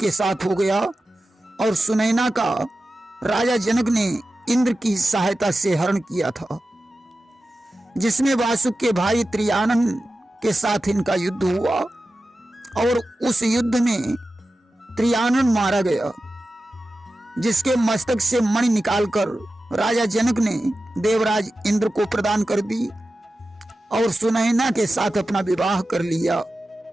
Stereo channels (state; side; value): normal; both; correlation 0.93